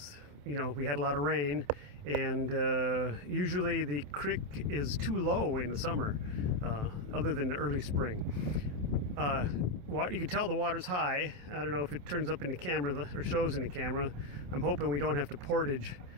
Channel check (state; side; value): late; left; 27 ms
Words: we had a lot of rain, and usually the creek is too low in the summer, other than the early spring. You can tell the water's high. I don't know if it turns up in the camera or shows in the camera. I'm hoping we don't have to portage